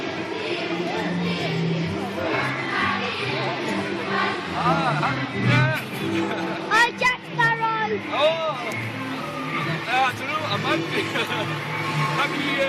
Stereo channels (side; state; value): both; identical; correlation 1.00